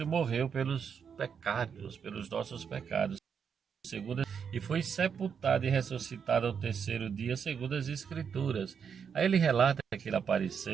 morreu pelos pecados, pelos nossos pecados, e foi sepultado e ressuscitado ao terceiro dia, segundo as Escrituras. Aí ele relata que ele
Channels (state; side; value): quieter; left; 6.9 dB